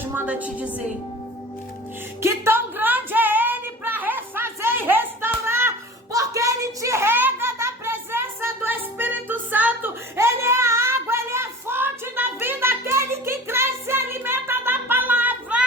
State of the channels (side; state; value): both; normal; correlation 0.38